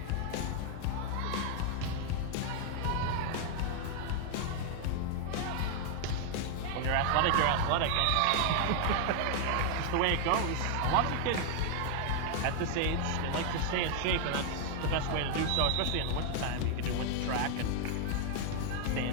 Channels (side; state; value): both; different; correlation 0.00